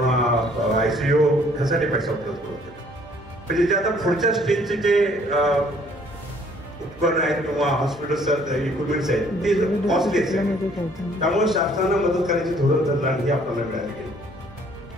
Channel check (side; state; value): both; normal; correlation 0.60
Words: ICU ह्यासाठी पैसा उपलब्ध करून दिला. म्हणजे जे आता पुढच्या स्टेजचे जे उपकरण आहेत किंवा हॉस्पिटल्स इक्विपमेंट्स आहेत ते कॉस्टली आहेत, त्यामुळे शासनाला मदत करायची धोरण ठरलं आणि हे आपल्याला मिळालं गेलं.